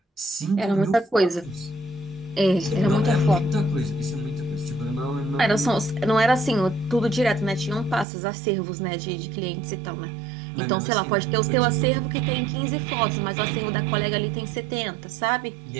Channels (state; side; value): drops out; left; at 8.1 s